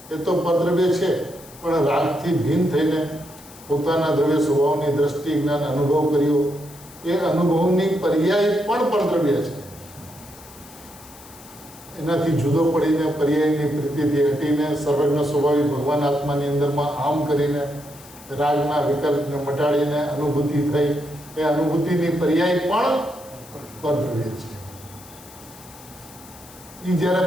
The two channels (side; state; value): left; noise; hiss, 20 dB below the sound